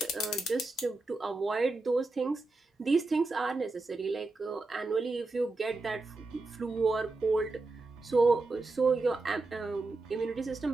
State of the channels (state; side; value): quieter; left; 3.3 dB